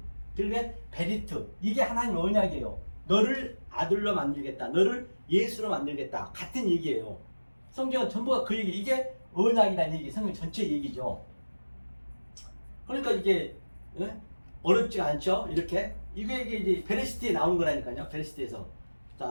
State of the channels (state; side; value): inverted; both; correlation -1.00